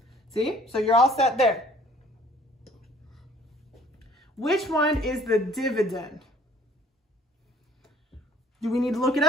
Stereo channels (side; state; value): both; normal; correlation 0.56